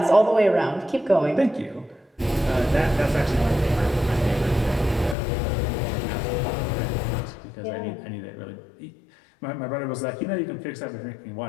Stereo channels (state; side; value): drops out; right; at 5.2 s